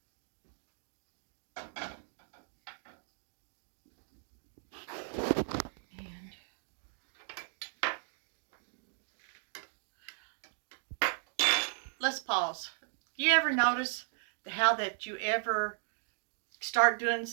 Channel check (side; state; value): left; silent; digital silence